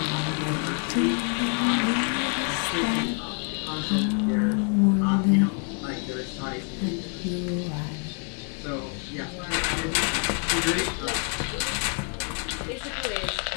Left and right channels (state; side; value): quieter; right; 39.2 dB